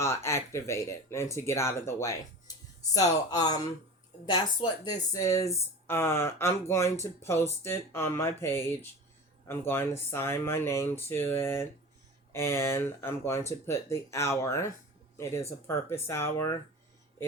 activated and to get out of the way. So that's what this is. I'm going to post it on my page. I'm going to sign my name to it, and I'm going to put the hour. It is a purpose hour.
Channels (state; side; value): normal; both; correlation 0.33